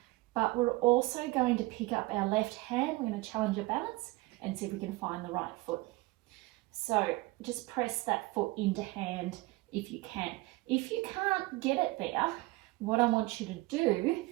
but we're also going to pick up our left hand. We're going to challenge our balance and see if we can find the right foot. So just press that foot into hand if you can. If you can't get it there, what I want you to do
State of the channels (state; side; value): quieter; left; 21.4 dB